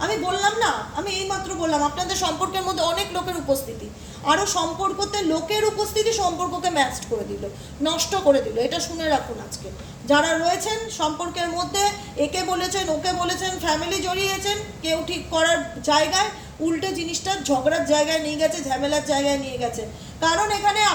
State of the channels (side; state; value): both; identical; correlation 1.00